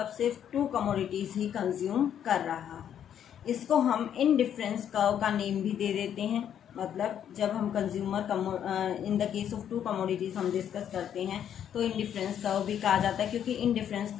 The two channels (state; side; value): quieter; right; 9.5 dB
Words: सिर्फ टू कमोडिटीज ही कंज्यूम कर रहा है। इसको हम इनडिफरेंस कर्व का नेम भी दे देते हैं। मतलब जब हम consumer in the case of to commodities हम डिस्कस करते हैं तो इनडिफरेंस कर्व भी कहा जाता है, क्योंकि इनडिफरेंस